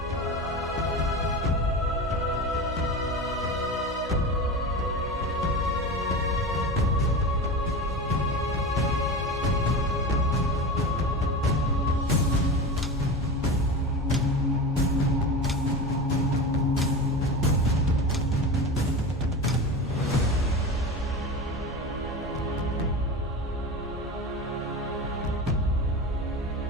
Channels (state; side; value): normal; both; correlation 0.26